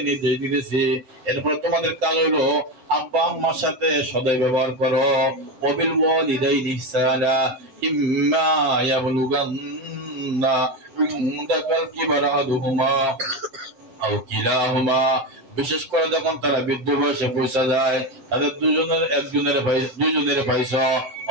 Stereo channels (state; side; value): late; left; 7.7 ms